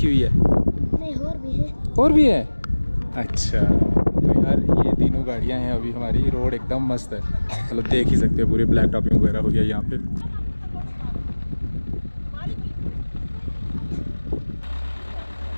हुई है? नहीं, और भी है। अच्छा, तो यार ये तीनों गाड़ियाँ हैं अभी हमारी। रोड एकदम मस्त है, मतलब देख ही सकते हो पूरे ब्लैक टॉपिंग वगैरह हो गया यहाँ पे।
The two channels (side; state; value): both; inverted; correlation -1.00